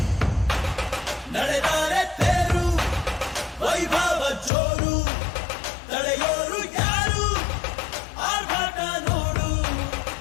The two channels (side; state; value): right; drops out; at 4.5 s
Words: ನಡೆದಾರೆ ತೇರು ವೈಭವ ಜೋರು ತಡೆಯೋರು ಯಾರು ಆರ್ಭಟ ನೋಡು